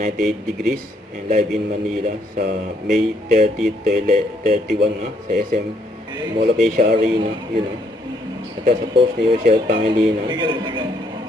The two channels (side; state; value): both; normal; correlation 0.70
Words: 98 Degrees. And live in Manila sa May 30 to 31 sa SM Mall of Asia Arena. At sa post ni Rochelle Pangilinan.